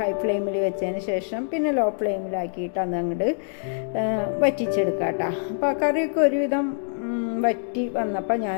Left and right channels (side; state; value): right; silent; 62 dB below the other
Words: ഫ്ലെയിമിൽ വെച്ചതിന് ശേഷം പിന്നെ ലോ ഫ്ലെയിമിലാക്കിയിട്ട് അത് അങ്ങോട്ട് വറ്റിച്ചെടുക്കുക കേട്ടോ. അപ്പോൾ കറിയൊക്കെ ഒരുവിധം വറ്റി വന്നപ്പോൾ